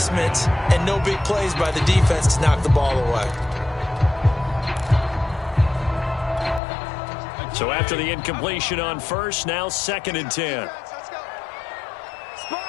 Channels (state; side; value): drops out; right; at 6.6 s